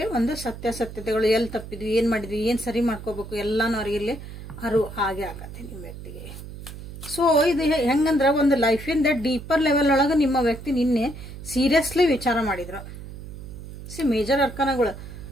ಒಂದು ಸತ್ಯಾಸತ್ಯತೆಗಳು, ಎಲ್ಲಿ ತಪ್ಪಿದ್ವಿ, ಏನು ಮಾಡಿದ್ವಿ, ಏನು ಸರಿ ಮಾಡ್ಕೋಬೇಕು ಎಲ್ಲನೂ ಅವ್ರಿಗೆ ಇಲ್ಲಿ ಆಗೇ ಆಗತ್ತೆ ನಿಮ್ಮ ವ್ಯಕ್ತಿಗೆ. ಸೊ ಇದು ಹೆಂಗಂದ್ರೆ ಒಂದು ಲೈಫಿಂದ ಡೀಪರ್ ಲೆವೆಲ್ ಒಳಗೆ ನಿಮ್ಮ ವ್ಯಕ್ತಿ ನಿನ್ನೆ ಸೀರಿಯಸ್ಲಿ ವಿಚಾರ ಮಾಡಿದ್ರು. ಮೇಜರ್ ಅರ್ಕಾನಗಳು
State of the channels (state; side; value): noise; right; hum, 12 dB below the sound